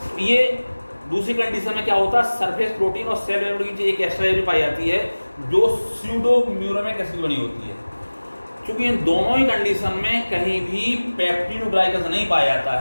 ये दूसरी कंडीशन में क्या होता है, सरफेस प्रोटीन और सेल मेम्ब्रेन की एक एक्स्ट्रा एरिया पाई जाती है जो स्यूडोम्यूरेमिक एसिड बनी होती है। क्योंकि इन दोनों ही कंडीशन में कहीं भी पेप्टिडोग्लाइकन्स नहीं पाया जाता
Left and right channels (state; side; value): inverted; both; correlation -1.00